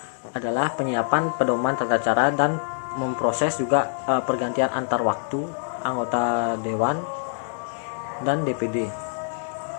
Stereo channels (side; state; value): right; silent; digital silence